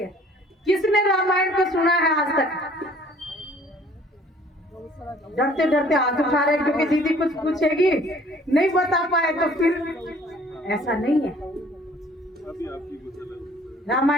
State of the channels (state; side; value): normal; both; correlation 0.55